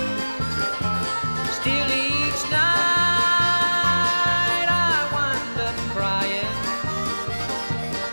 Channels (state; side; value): inverted; both; correlation -1.00